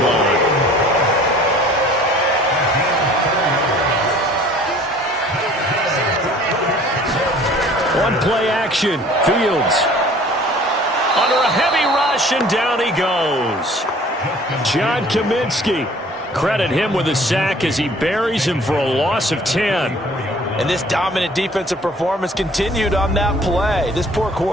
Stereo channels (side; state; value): both; normal; correlation 0.51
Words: line. One play action. Fields under a heavy rush, and down he goes. John Kaminsky. Credit him with a sack as he buries him for a loss of 10. And this dominant defensive performance continued on that play. This poor